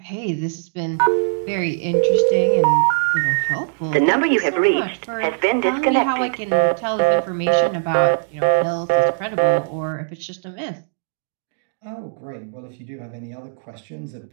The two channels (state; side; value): silent; left; digital silence